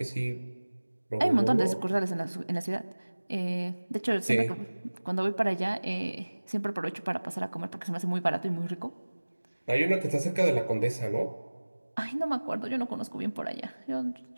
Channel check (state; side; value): inverted; both; correlation -1.00